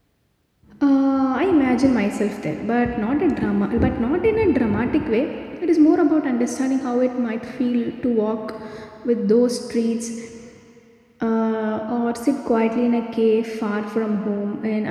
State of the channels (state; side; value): identical; both; correlation 1.00